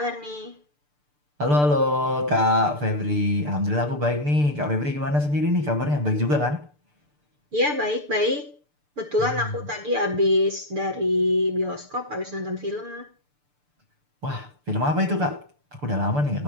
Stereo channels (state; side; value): late; left; 6.8 ms